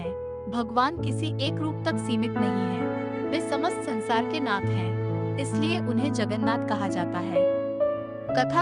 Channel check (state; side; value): identical; both; correlation 1.00